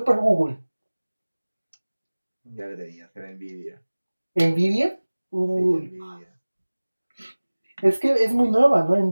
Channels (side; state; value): both; inverted; correlation -1.00